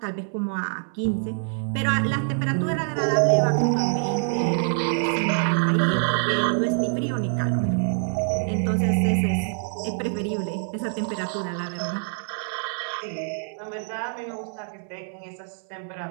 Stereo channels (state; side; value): silent; left; 62 dB below the other